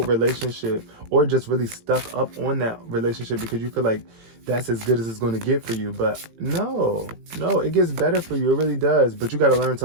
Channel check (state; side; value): late; left; 18 ms